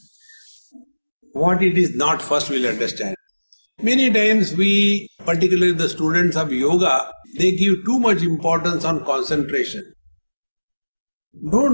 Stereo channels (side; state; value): both; inverted; correlation -1.00